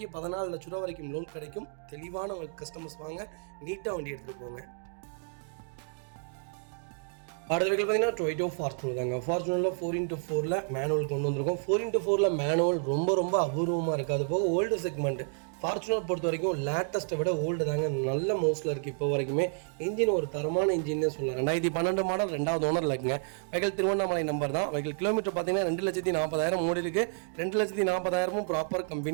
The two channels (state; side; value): silent; left; 55 dB below the other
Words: 14 லட்ச ரூபா வரைக்கும் லோன் கிடைக்கும். தெளிவான கஸ்டமர்ஸ் வாங்க, நீட்டாக வண்டி எடுத்துகிட்டு போங்க. அடுத்த வெஹிக்கிள் பார்த்தீங்கன்னா டொயோட்டோ ஃபார்ச்சுனர் தாங்க. ஃபார்ச்சுனரில் 4x4 மேனுவல் கொண்டு வந்திருக்கோம். 4x4 மேனுவல் ரொம்ப ரொம்ப அபூர்வமாக இருக்குது. அது போக ஓல்டு செக்மெண்ட். ஃபார்ச்சுனர் பொறுத்த வரைக்கும் லேட்டஸ்ட்டை விட ஓல்டு தாங்க நல்ல மோஸ்ட்டில் இருக்குது. இப்போ வரைக்குமே இன்ஜின் ஒரு தரமான இன்ஜின்னே சொல்லலாம். 2012 மாடல், 2வது ஓனரில் இருக்குங்க. வெஹிக்கிள் திருவண்ணாமலை நம்பர் தான். வெஹிக்கிள் கிலோமீட்டர் பார்த்தீங்கன்னா 2,40,000 ஓடி இருக்குது. 2,40,000 ப்ராப்பர்